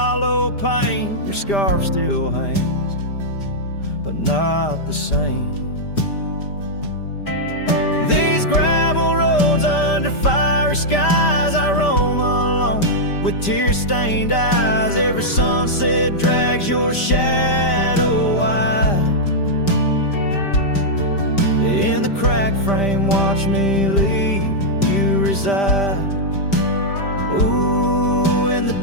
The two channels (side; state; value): right; late; 5.1 ms